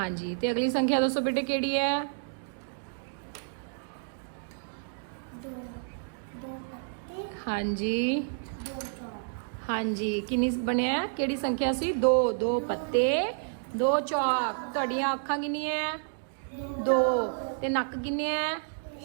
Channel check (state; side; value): silent; left; digital silence